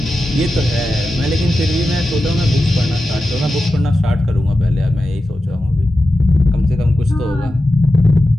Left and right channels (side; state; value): both; normal; correlation 0.92